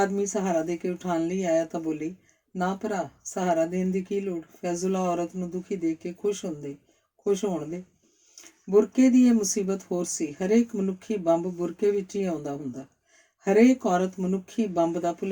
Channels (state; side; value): identical; both; correlation 1.00